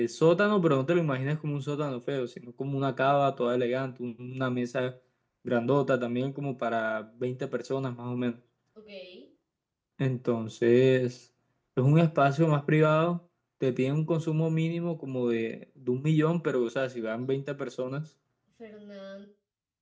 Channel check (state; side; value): identical; both; correlation 1.00